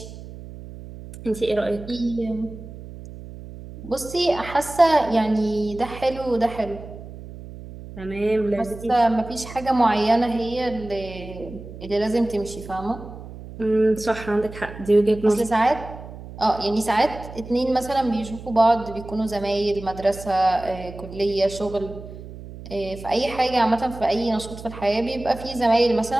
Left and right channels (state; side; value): noise; right; hum, 14 dB below the sound